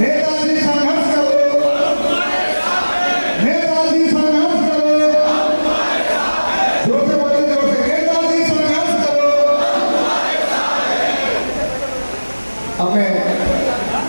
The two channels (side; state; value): both; inverted; correlation -1.00